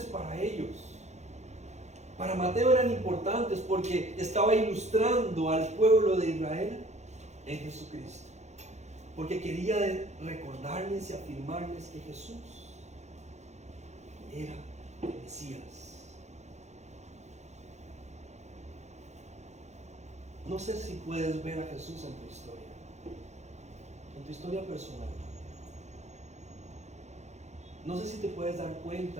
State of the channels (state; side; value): late; left; 0.33 ms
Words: para ellos? Para Mateo eran importantes porque estaba ilustrando al pueblo de Israel en Jesucristo. Porque quería recordarles y afirmarles que Jesús era el Mesías. No sé si puedes ver a Jesús en tu historia personal. No sé si te puedes dar